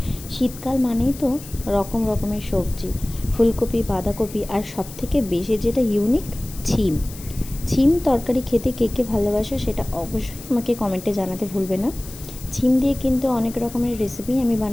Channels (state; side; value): noise; left; hiss, 16 dB below the sound